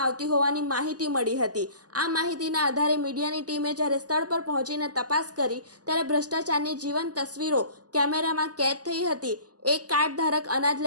આવતી હોવાની માહિતી મળી હતી। આ માહિતીના આધારે મીડિયાની ટીમે જ્યારે સ્થળ પર પહોંચીને તપાસ કરી ત્યારે ભ્રષ્ટાચારની જીવંત તસવીરો કેમેરામાં કેદ થઈ હતી। એક કાર્ડ ધારક અનાજ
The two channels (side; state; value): left; late; 0.68 ms